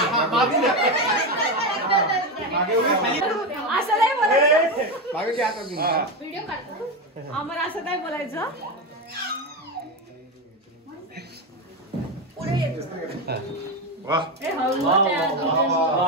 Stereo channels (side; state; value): both; normal; correlation 0.14